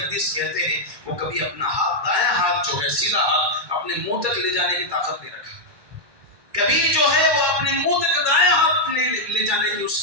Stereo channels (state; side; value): late; left; 1.2 ms